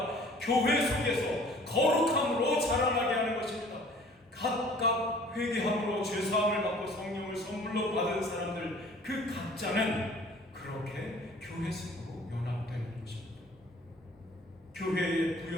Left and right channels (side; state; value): both; normal; correlation 0.51